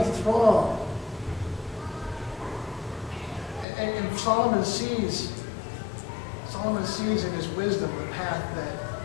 throng. And Solomon sees in his wisdom the path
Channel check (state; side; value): drops out; right; at 3.7 s